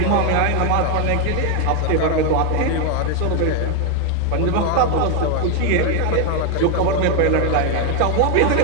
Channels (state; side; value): different; both; correlation 0.01